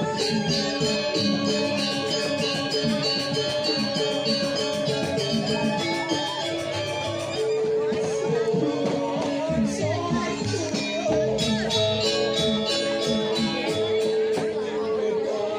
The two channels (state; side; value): identical; both; correlation 1.00